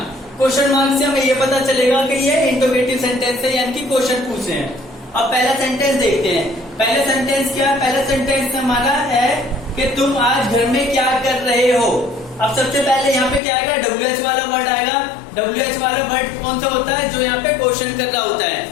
क्वेश्चन मार्क से हमें ये पता चलेगा कि ये इंट्रोगेटिव सेंटेंस है, यानी कि क्वेश्चन पूछे हैं। अब पहला सेंटेंस देखते हैं। पहला सेंटेंस क्या है, पहला सेंटेंस हमारा है कि तुम आज घर में क्या कर रहे हो। अब सबसे पहले यहाँ पे क्या आएगा, WH वाला वर्ड आएगा। WH वाला वर्ड कौन सा होता है, जो यहाँ पे क्वेश्चन कर रहा होता है।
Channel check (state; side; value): drops out; right; at 13.4 s